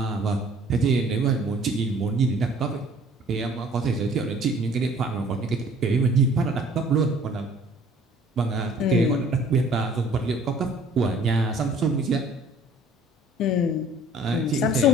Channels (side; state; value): both; normal; correlation 0.53